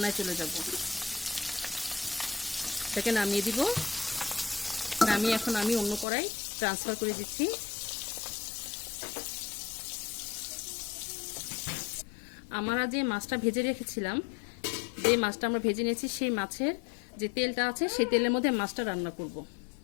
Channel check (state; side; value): drops out; right; at 6.1 s